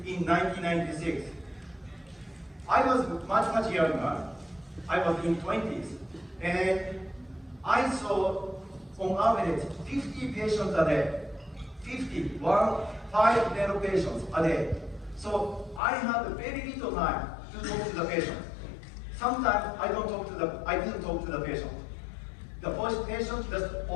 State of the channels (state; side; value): drops out; right; at 15.8 s